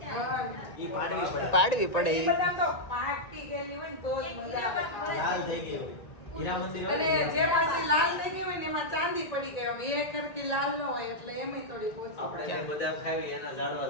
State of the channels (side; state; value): right; late; 1.9 ms